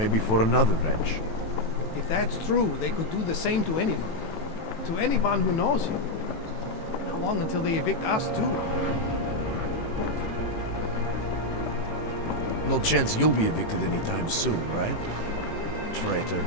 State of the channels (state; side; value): late; right; 18 ms